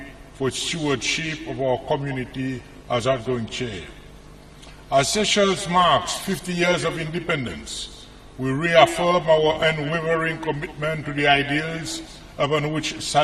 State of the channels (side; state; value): both; identical; correlation 1.00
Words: for its stewardship of our community as outgoing chair. As Seychelles marks 50 years of independence, we reaffirm our unwavering commitment to the ideals upon which